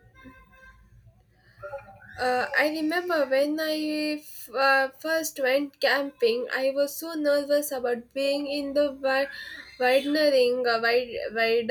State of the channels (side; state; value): both; identical; correlation 1.00